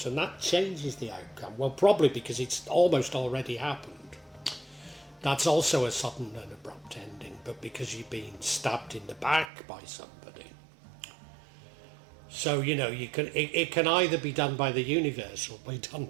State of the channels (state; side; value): drops out; left; at 9.5 s